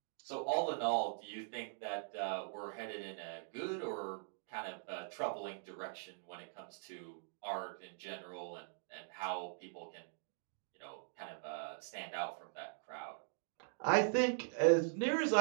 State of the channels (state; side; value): silent; left; digital silence